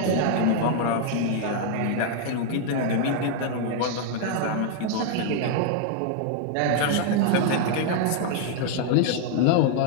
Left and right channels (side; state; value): both; different; correlation 0.00